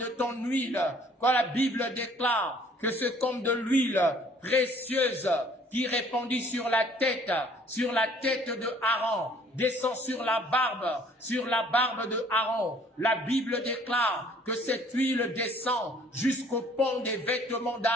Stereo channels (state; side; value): normal; both; correlation 0.57